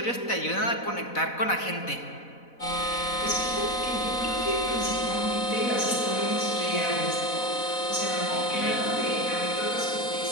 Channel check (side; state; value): right; late; 4.1 ms